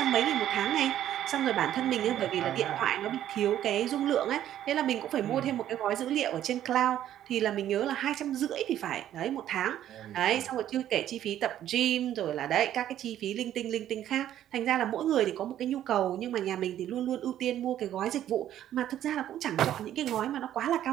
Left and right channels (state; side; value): quieter; left; 11.6 dB